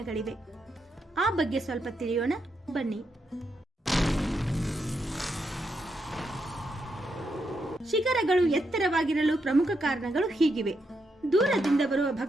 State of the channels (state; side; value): normal; both; correlation 0.82